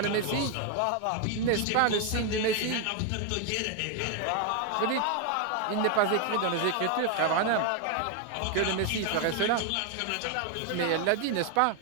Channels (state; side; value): different; both; correlation 0.01